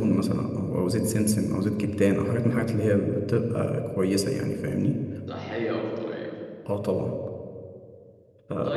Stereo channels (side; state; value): both; identical; correlation 1.00